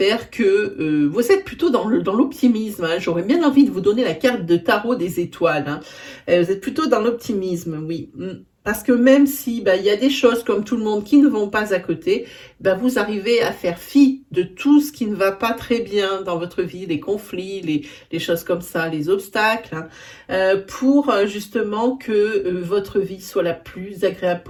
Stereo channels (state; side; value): identical; both; correlation 1.00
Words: que vous êtes plutôt dans l'optimisme. Hein. J'aurais bien envie de vous donner la carte de tarot des étoiles. Hein. Vous êtes plutôt dans l'optimisme, oui. Parce que même si il y a des choses comme tout le monde qui ne vont pas à côté, vous arrivez à faire fi de tout ce qui ne va pas très bien dans votre vie, les conflits, les choses comme ça, les obstacles, hein, pour justement que votre vie soit la plus agréable